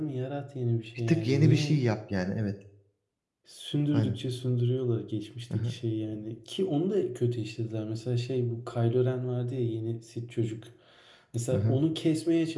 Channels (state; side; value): identical; both; correlation 1.00